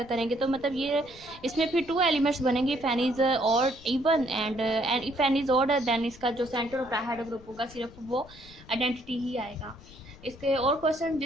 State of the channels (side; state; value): left; noise; rumble, 21 dB below the sound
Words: करेंगे तो मतलब ये इसमें फिर 2 एलिमेंट्स बनेंगे if n is odd even and if n is odd then इसका जो सेंटर ऑफ डाइहाइड्रो ग्रुप होगा सिर्फ वो आइडेंटिटी ही आएगा। इसके और क्वेश्चन